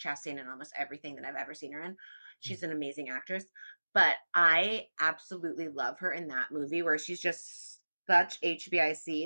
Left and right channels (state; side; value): inverted; both; correlation -1.00